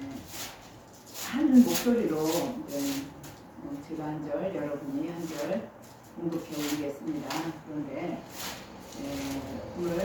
한 목소리로 제가 한 절, 여러분이 한 절 공독해 올리겠습니다. 그런데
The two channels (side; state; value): both; identical; correlation 1.00